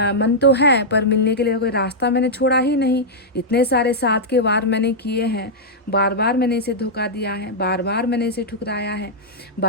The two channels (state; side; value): normal; both; correlation -0.07